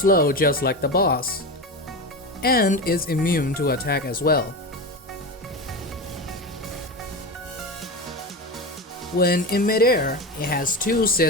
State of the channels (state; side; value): normal; both; correlation 0.22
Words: just like the boss, and is immune to attack as well. When in midair, it has 2